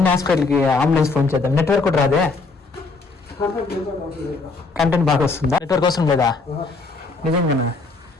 హాస్పిటల్కి అంబులెన్స్ ఫోన్ చేద్దాం. నెట్వర్క్ కూడా రాదే, కంటెంట్ బాగా వస్తుందా? నెట్వర్క్ అవసరం లేదా? నిజంగా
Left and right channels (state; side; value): quieter; right; 3.9 dB